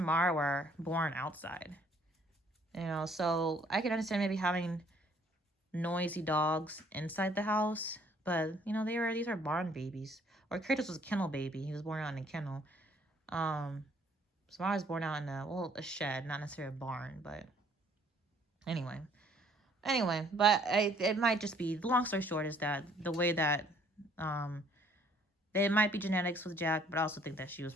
were born outside. So I can understand maybe having noisy dogs inside the house. But, these are barn babies. Or Kratos was a kennel baby. He was born on a kennel. Samara was born out in a shed, not necessarily a barn, but anyway. But it might just be, the long story short is that the way that, it might be genetics with Jack, but I also think that she was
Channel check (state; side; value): normal; both; correlation 0.61